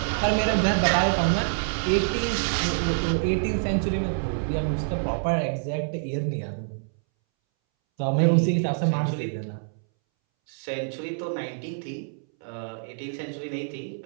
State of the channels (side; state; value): left; silent; 61 dB below the other